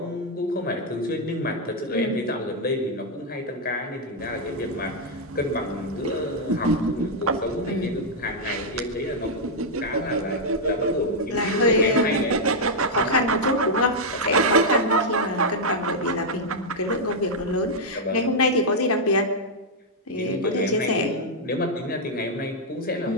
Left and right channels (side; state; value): both; normal; correlation -0.04